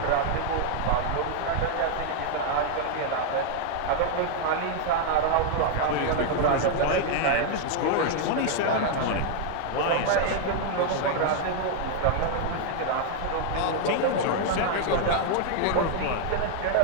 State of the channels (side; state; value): both; different; correlation 0.00